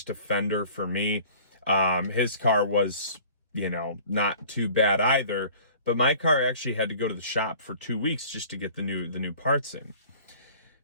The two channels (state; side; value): inverted; both; correlation -0.48